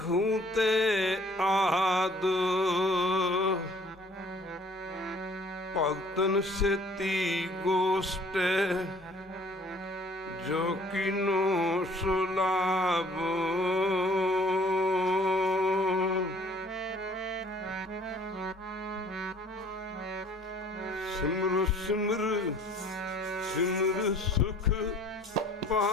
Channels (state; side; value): normal; both; correlation 0.55